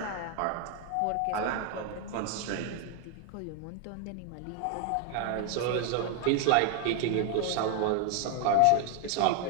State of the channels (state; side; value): different; both; correlation 0.01